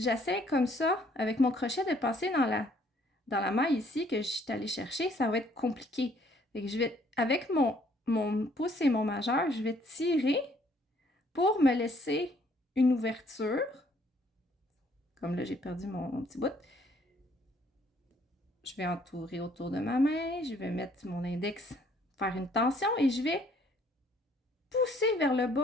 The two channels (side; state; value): both; normal; correlation 0.63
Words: comme ça, avec mon crochet, de passer dans la maille ici que je suis allée chercher, ça va être compliqué. Fait que je vais, avec mon pouce et mon majeur, je vais tirer pour me laisser une ouverture. Comme là, j'ai perdu mon petit bout. Je vais entourer autour de ma main. Je vais mettre mon index, faire une tension et je vais pousser vers le